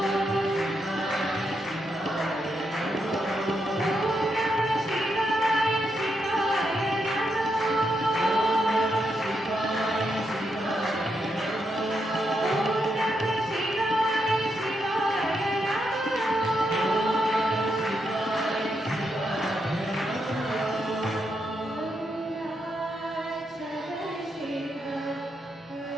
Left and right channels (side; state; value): both; normal; correlation 0.82